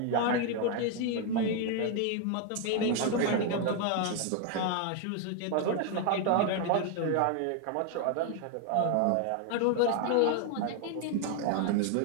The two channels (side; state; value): both; different; correlation 0.01